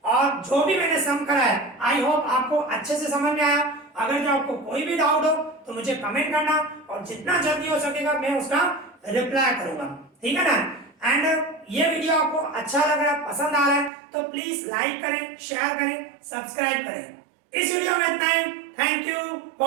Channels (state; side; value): drops out; left; at 13.9 s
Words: और जो भी मैंने सम करा है आई होप आपको अच्छे से समझ में आया। अगर जो आपको कोई भी डाउट हो तो मुझे कमेंट करना और जितना जल्दी हो सकेगा मैं उसका रिप्लाई करूंगा, ठीक है ना। एंड ये वीडियो आपको अच्छा लग रहा है, पसंद आ रहा है तो प्लीज लाइक करें, शेयर करें, सब्सक्राइब करें। इस वीडियो में इतना ही। Thank you